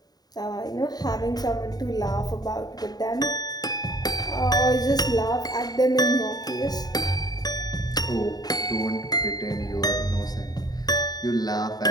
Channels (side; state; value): right; late; 0.19 ms